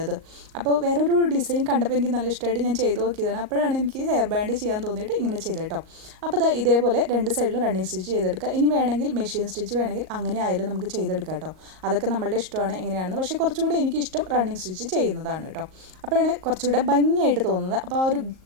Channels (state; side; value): late; left; 38 ms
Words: ഇത്. അപ്പോൾ വേറൊരു ഡിസൈൻ കണ്ടപ്പോൾ എനിക്ക് നല്ല ഇഷ്ടമായിട്ട് ഞാൻ ചെയ്ത് നോക്കിയതാണ്. അപ്പോഴാണ് എനിക്ക് ഹെയർ ബാൻഡ് ചെയ്യാൻ തോന്നിയിട്ട് ഇങ്ങനെ ചെയ്തത് കേട്ടോ. അപ്പോൾ ഇതേപോലെ രണ്ട് സൈഡിലും റണ്ണിങ് സ്റ്റിച്ച് ചെയ്തെടുക്കുക. ഇനി വേണമെങ്കിൽ മെഷീൻ സ്റ്റിച്ച് വേണമെങ്കിൽ അങ്ങനെ ആയാലും നമുക്ക് ചെയ്തെടുക്കാം കേട്ടോ. അതൊക്കെ നമ്മളുടെ ഇഷ്ടമാണ് എങ്ങനെയാണെന്ന്. പക്ഷേ കുറച്ചും കൂടി എനിക്ക് ഇഷ്ടം റണ്ണിങ് സ്റ്റിച്ച് ചെയ്യുന്നതാണ് കേട്ടോ. അപ്പോഴാണ് കുറച്ചുകൂടെ ഭംഗിയായിട്ട് തോന്നുന്നത്. അപ്പോൾ ആ ഒരു